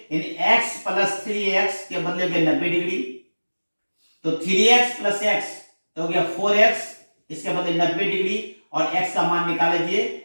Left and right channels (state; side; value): inverted; both; correlation -1.00